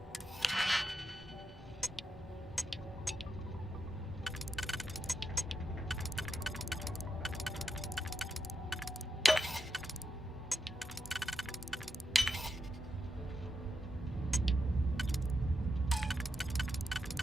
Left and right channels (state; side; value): normal; both; correlation 0.86